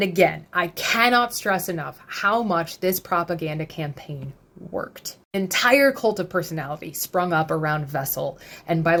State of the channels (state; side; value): identical; both; correlation 1.00